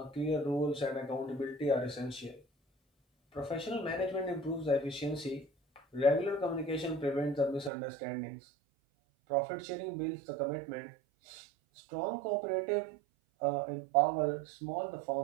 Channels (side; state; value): left; drops out; at 7.7 s